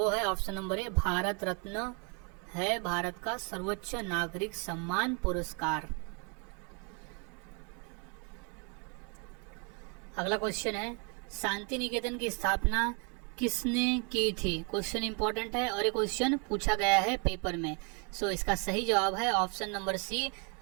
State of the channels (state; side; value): quieter; left; 35.8 dB